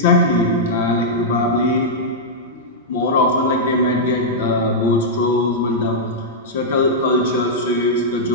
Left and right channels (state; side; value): normal; both; correlation -0.08